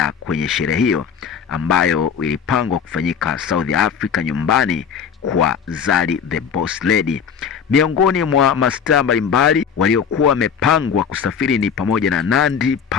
kwenye sherehe hiyo ambayo ilipangwa kufanyika South Africa, nyumbani kwa Zari the Boss Lady. Miongoni mwa mastaa mbalimbali waliokuwa wamepangwa kusafiri ni pamoja na Nandy,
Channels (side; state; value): right; quieter; 7.1 dB